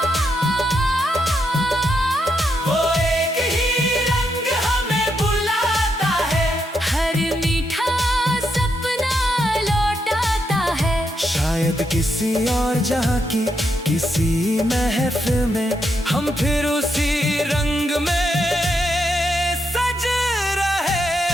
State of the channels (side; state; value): both; normal; correlation 0.81